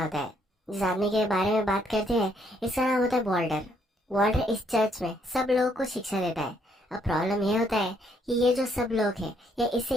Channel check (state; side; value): normal; both; correlation 0.70